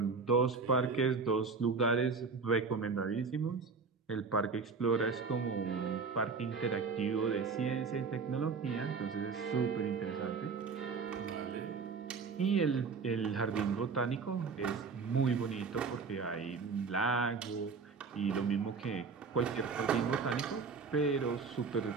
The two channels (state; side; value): quieter; left; 5.0 dB